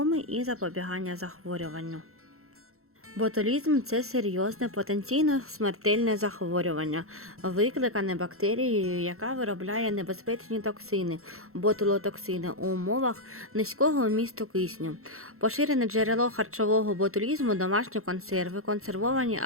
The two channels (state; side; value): late; left; 0.63 ms